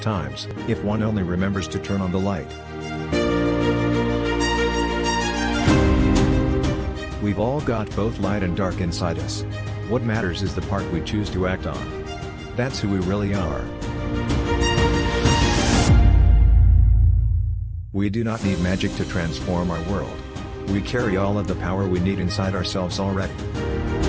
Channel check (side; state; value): both; identical; correlation 1.00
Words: if one only remembers to turn on the light. We've all got both light and dark inside us. What matters is the part we choose to act on. That's who we really are. We do not need magic to transform our world. We carry all of the power we need inside ourselves already.